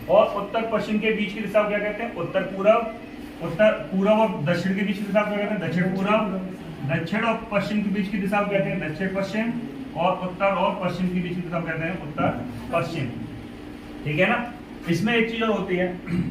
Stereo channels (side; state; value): both; identical; correlation 1.00